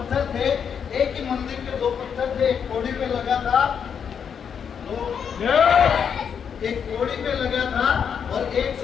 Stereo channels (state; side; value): quieter; right; 7.3 dB